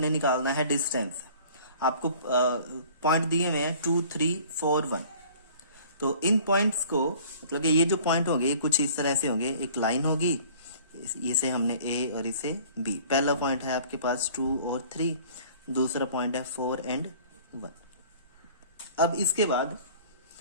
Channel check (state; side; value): inverted; both; correlation -0.49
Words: निकालना है डिस्टेंस। आपको पॉइंट दिए हुए हैं 2, 3, 4, 1। तो इन पॉइंट्स को मतलब कि ये जो पॉइंट होंगे ये कुछ इस तरह से होंगे। एक लाइन होगी, इसे हमने ए और इसे बी। पहला पॉइंट है आपके पास 2 और 3, दूसरा पॉइंट है 4 एंड 1। अब इसके बाद